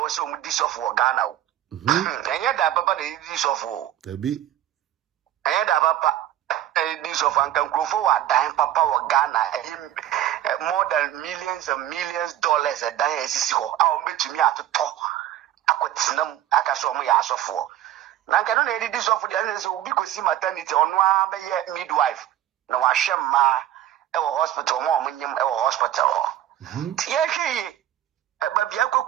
se o mu disofo Ghana o enye da papa de edidi sofo ebi enye da papa edidi sofo anka nkrofo wa dan papa wo Ghana more than millions and millions dollars a dan esisi ho a o betumi atoto akotinam akaso mo ya asofo na nka no na edidi sofo de ase obi kosi maternity ono a be ye midwife na wa hwemma e wo hospital mo nyim e wo hospital tie hwe ba bia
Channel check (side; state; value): left; quieter; 12.5 dB